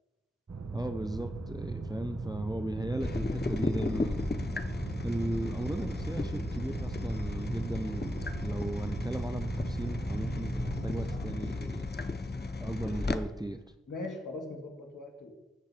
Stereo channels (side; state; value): both; normal; correlation 0.87